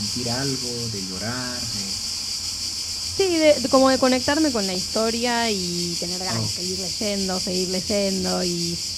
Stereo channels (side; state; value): both; identical; correlation 1.00